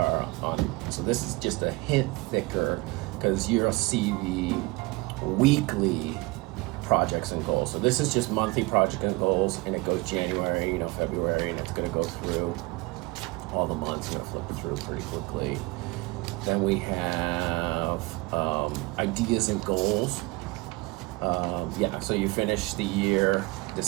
so this is just a hint thicker, because you'll see the weekly projects and goals. So this is just monthly project and goals, and it goes January, February, and it's going to go through all the months. I'm going to flip through pretty quickly. Then we have ideas and goals. So you finish the year,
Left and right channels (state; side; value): quieter; left; 24.1 dB